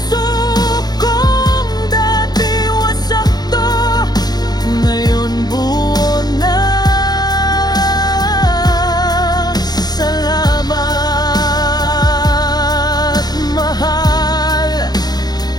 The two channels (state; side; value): late; right; 0.19 ms